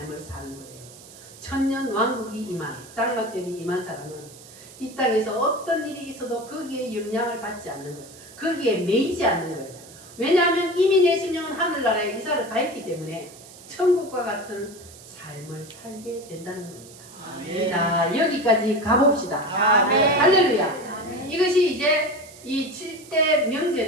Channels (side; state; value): right; noise; hiss, 20 dB below the sound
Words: 사는 거예요. 천년 왕국이 임한, 장막절이 임한 사람은 이 땅에서 어떤 일이 있어도 거기에 영향을 받지 않는 거예요. 거기에 매이지 않는 거예요. 왜냐하면 이미 내 심령은 하늘나라에 이사를 가했기 때문에 천국과 같은 삶을 살게 된다는 겁니다. 자, 여기까지 가봅시다. 아멘. 할렐루야. 이것이 이제 이 7대